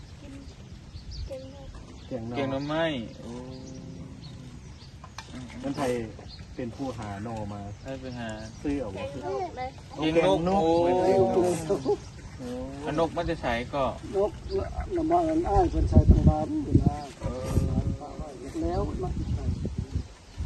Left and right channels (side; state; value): both; identical; correlation 1.00